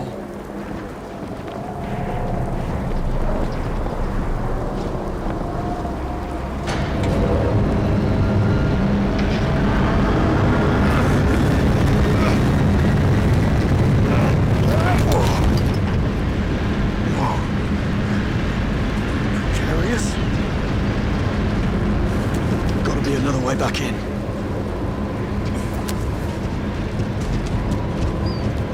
Precarious? Gotta be another way back in.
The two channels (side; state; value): both; identical; correlation 1.00